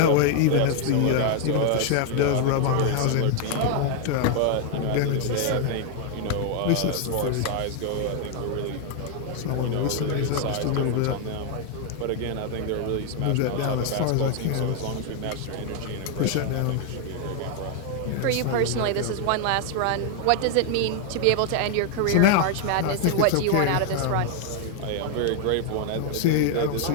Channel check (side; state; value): both; different; correlation 0.00